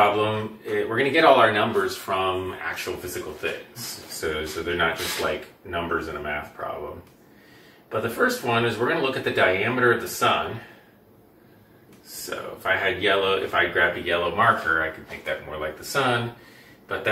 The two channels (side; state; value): both; identical; correlation 1.00